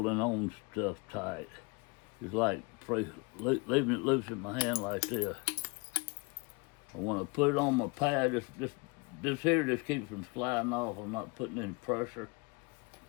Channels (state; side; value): quieter; right; 29.6 dB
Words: on stuff tight. It's like leaving it loose in my hand like this. I want to put it on my pad, this here just keeps from sliding off. I'm not putting any pressure.